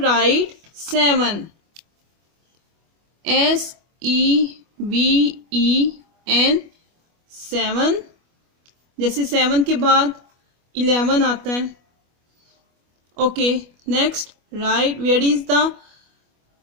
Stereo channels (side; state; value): left; late; 25 ms